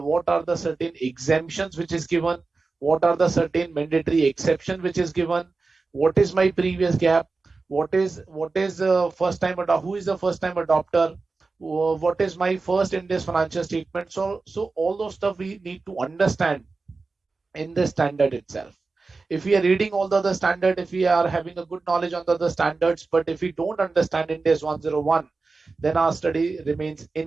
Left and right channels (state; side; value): quieter; left; 4.0 dB